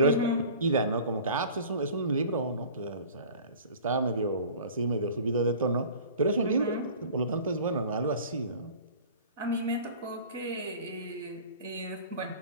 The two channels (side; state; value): both; inverted; correlation -0.43